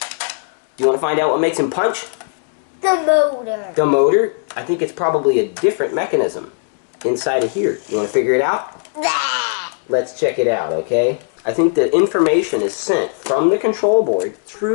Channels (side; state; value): right; silent; 61 dB below the other